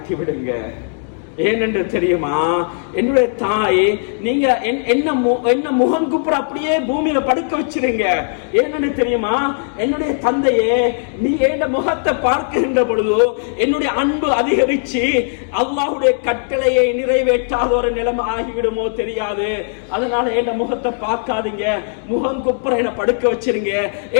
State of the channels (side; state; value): right; silent; digital silence